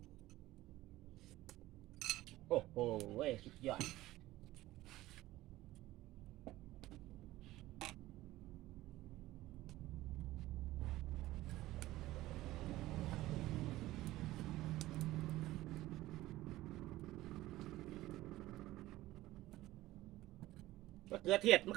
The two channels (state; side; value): quieter; left; 16.7 dB